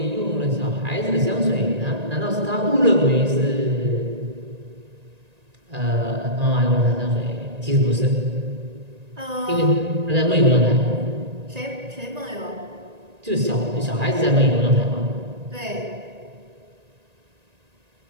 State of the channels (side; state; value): left; late; 1.9 ms